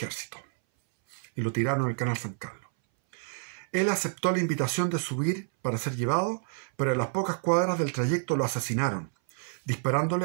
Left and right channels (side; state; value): left; silent; 59 dB below the other